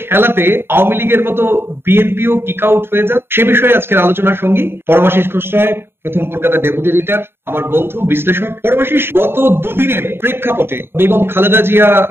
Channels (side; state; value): left; late; 0.11 ms